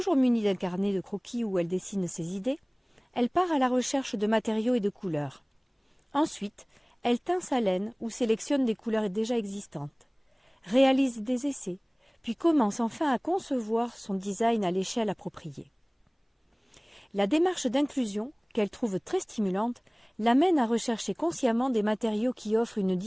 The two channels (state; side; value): identical; both; correlation 1.00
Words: munie d'un carnet de croquis où elle dessine ses idées, elle part à la recherche de matériaux et de couleurs. Ensuite, elle teint sa laine ou sélectionne des couleurs déjà existantes, réalise des essais, puis commence enfin à concevoir son design à l'échelle appropriée. La démarche d'inclusion, qu'elle trouve très stimulante, l'amène à rechercher consciemment des matériaux qui offrent une